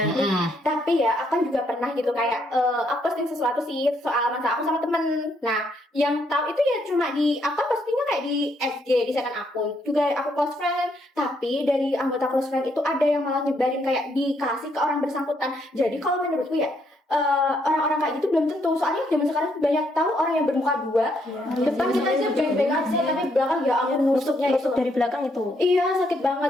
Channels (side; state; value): both; normal; correlation 0.73